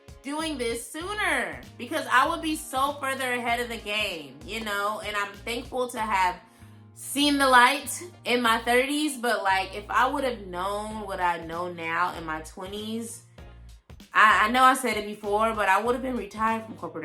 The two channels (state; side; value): identical; both; correlation 1.00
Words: doing this sooner, because I would be so further ahead of the game, you know. And I'm thankful to have seen the light in my 30s, but like, if I would have known what I know now in my 20s, I know I said it before, but I would have been retired from corporate